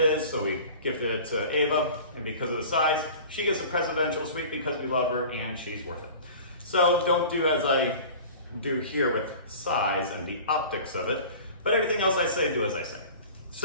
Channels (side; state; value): both; inverted; correlation -0.40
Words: so we gifted it to Ava, and because of the size, she gets a presidential suite because we love her and she's worth it. So don't do as I do here with size and the optics of it, but everything else I say, do as I say.